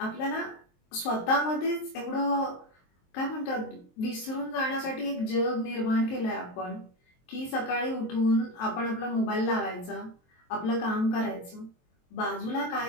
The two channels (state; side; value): late; right; 23 ms